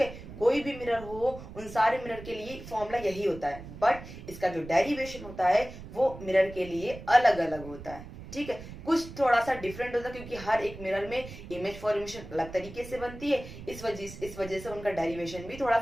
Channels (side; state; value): right; noise; rumble, 13 dB below the sound